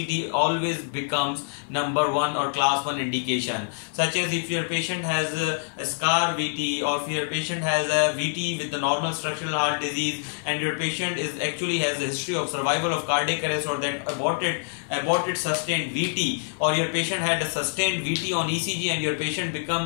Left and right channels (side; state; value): right; silent; digital silence